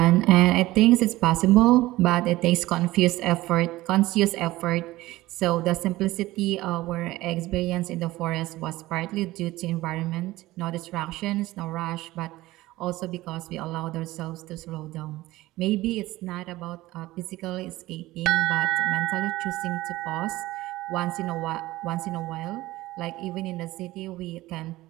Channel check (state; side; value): quieter; left; 17.7 dB